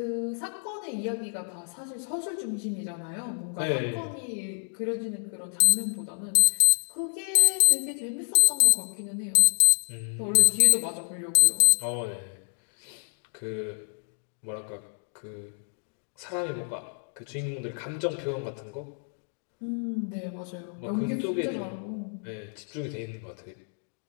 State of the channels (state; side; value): silent; right; 59 dB below the other